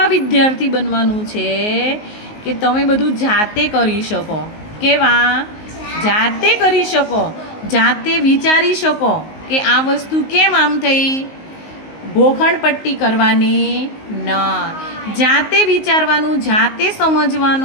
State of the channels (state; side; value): late; right; 19 ms